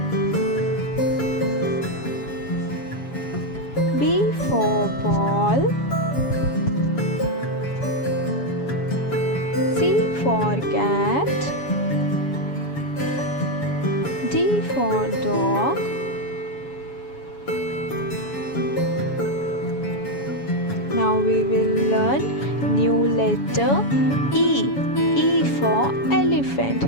B for ball, C for cat, D for dog, now we will learn new letter E for elephant.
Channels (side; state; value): right; late; 7.1 ms